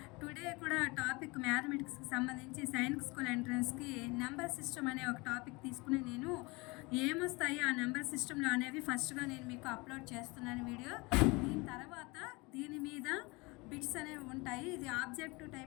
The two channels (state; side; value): quieter; right; 25.4 dB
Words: టుడే కూడా టాపిక్ మ్యాథమెటిక్స్కి సంబంధించి సైనిక్ స్కూల్ ఎంట్రన్స్కి నెంబర్ సిస్టమ్ అనే ఒక టాపిక్ తీసుకుని నేను ఏమొస్తాయి ఆ నెంబర్ సిస్టంలో అనేవి ఫస్ట్గా నేను మీకు అప్లోడ్ చేస్తున్నాను వీడియో. దీని తర్వాత దీని మీద బిట్స్ అనేవి ఉంటాయి. ఇది ఆబ్జెక్టివ్